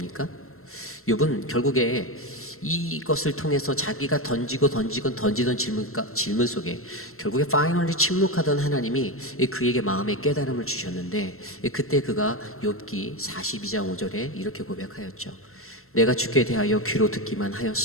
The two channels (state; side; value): late; right; 0.62 ms